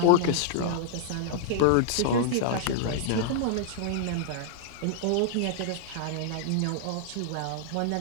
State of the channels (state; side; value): different; both; correlation -0.01